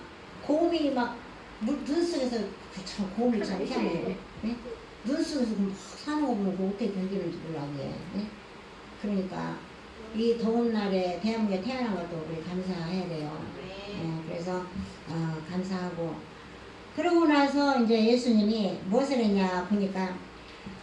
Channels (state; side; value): identical; both; correlation 1.00